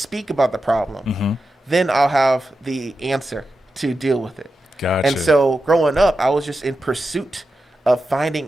about the problem, then I'll have the answer to deal with it. Gotcha. And so growing up, I was just in pursuit of finding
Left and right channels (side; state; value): both; normal; correlation 0.90